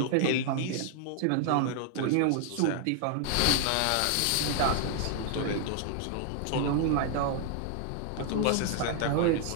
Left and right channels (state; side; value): different; both; correlation 0.00